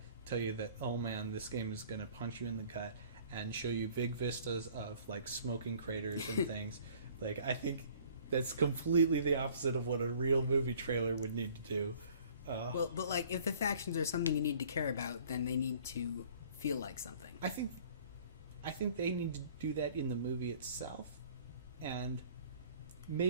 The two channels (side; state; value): both; inverted; correlation -0.53